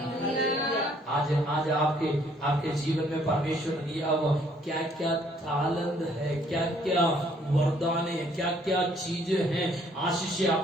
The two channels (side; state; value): both; normal; correlation 0.63